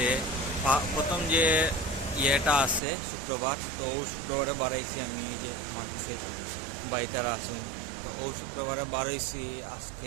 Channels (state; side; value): drops out; left; at 2.8 s